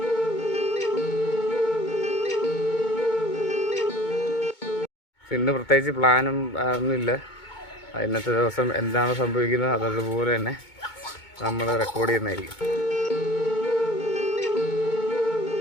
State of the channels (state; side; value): late; right; 2.2 ms